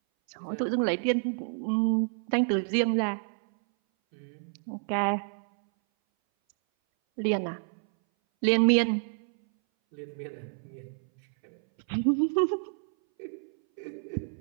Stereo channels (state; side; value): silent; left; 59 dB below the other